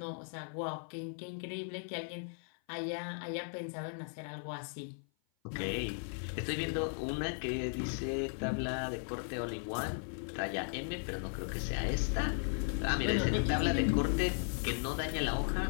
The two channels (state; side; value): silent; right; 53 dB below the other